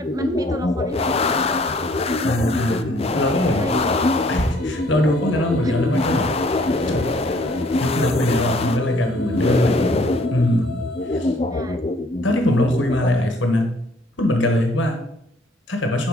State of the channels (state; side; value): normal; both; correlation 0.60